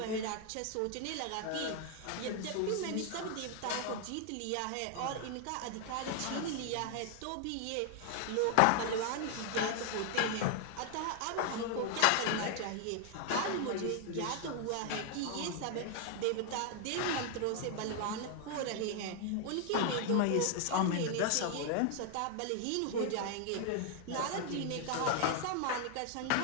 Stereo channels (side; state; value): both; different; correlation 0.00